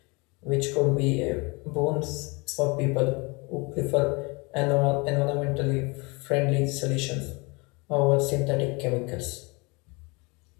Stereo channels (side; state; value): right; quieter; 28.1 dB